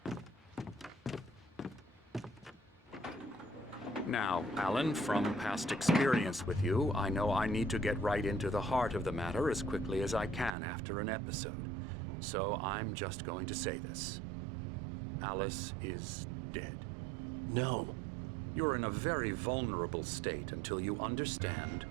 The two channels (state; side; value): drops out; left; at 10.5 s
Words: Now, Alan, from past experience with you, I know I need to get right into the heart of the matter as quickly as I can after an episode. So I'm just going to say this. Alice is dead. No. You're in a very vulnerable state until you understand